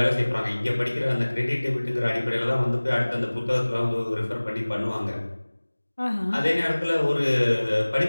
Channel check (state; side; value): inverted; both; correlation -1.00